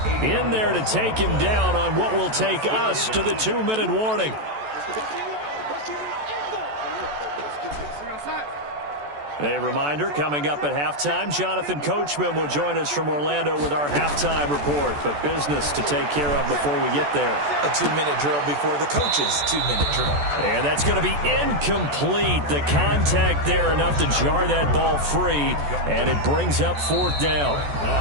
in there to take him down on what will take us to the 2-minute warning. A reminder, coming up at halftime, Jonathan Coachman will join us from Orlando with our halftime report. But business to take care of before we get there. A 2-minute drill before the coach's 2-minute drill. And that's going to be incomplete. The contact there enough to jar that ball free, and it brings up 4th down.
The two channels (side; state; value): left; late; 14 ms